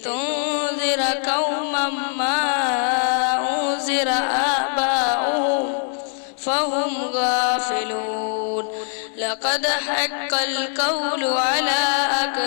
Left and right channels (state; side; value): silent; right; 64 dB below the other